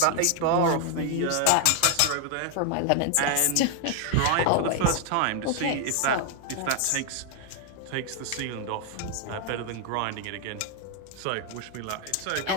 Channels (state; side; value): different; both; correlation 0.00